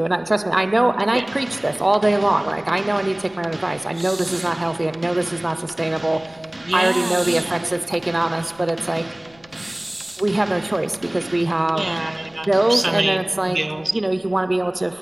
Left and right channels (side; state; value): left; noise; rumble, 29 dB below the sound